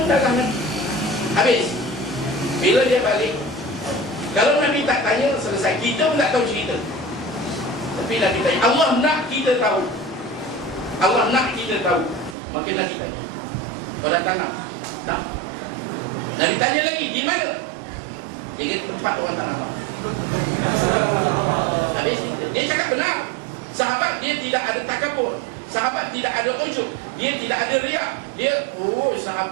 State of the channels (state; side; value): drops out; left; at 12.4 s